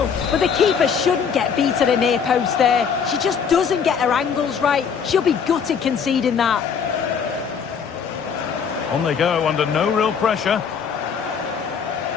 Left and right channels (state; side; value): quieter; right; 6.7 dB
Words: But the keeper shouldn't get beat at a near post there. She just doesn't get her angles right. She'll be gutted conceding that. On they go under no real pressure.